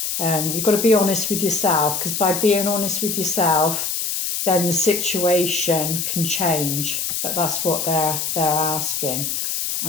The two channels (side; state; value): left; noise; hiss, 2 dB below the sound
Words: You've got to be honest with yourself, because by being honest with yourself, then the situation can change. But that's what they're asking,